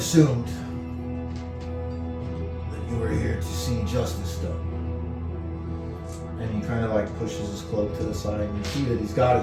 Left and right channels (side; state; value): both; identical; correlation 1.00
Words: that you were here to see justice done. And he kind of pushes his cloak to the side, and you see that he's got